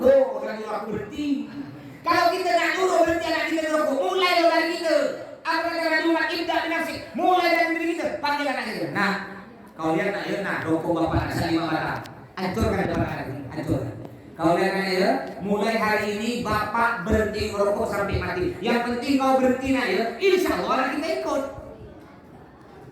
orang nyuruh aku berhenti. Kalau kita nak nyuruh berhenti anak kita ngerokok, mulai dari kita. Apa kata rumah indah binasik, mulai dari diri kita, panggil anak kita. Nah, kau lihat nak ya, nah rokok bapak asal 5 batang, hancurkan depan anak ini, hancurkan. Kau lihat kan ya, mulai hari ini bapak berhenti merokok sampai mati. Yang penting kau berhenti nak ya, insya Allah anak kita ikut.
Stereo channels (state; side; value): identical; both; correlation 1.00